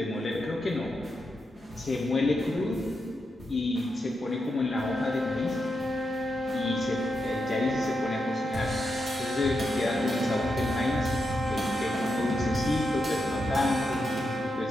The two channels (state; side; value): normal; both; correlation 0.85